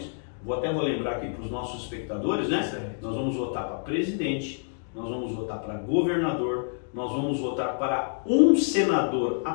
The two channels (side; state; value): right; silent; digital silence